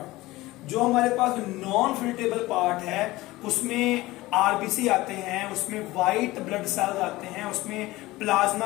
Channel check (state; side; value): quieter; right; 18.9 dB